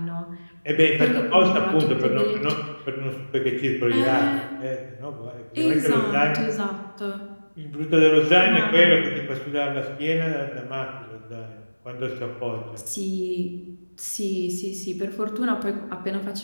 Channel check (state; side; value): inverted; both; correlation -1.00